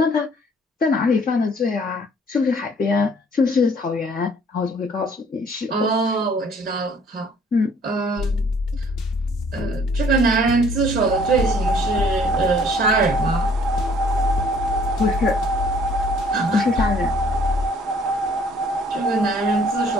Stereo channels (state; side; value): normal; both; correlation 0.58